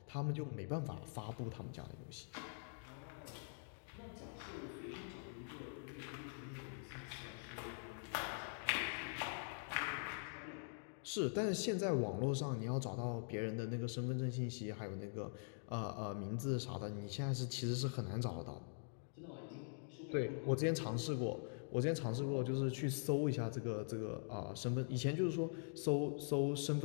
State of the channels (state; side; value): silent; right; digital silence